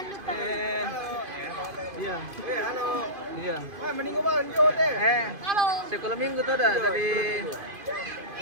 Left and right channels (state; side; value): late; left; 2.5 ms